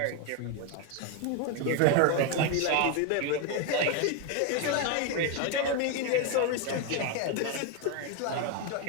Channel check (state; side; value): different; both; correlation 0.01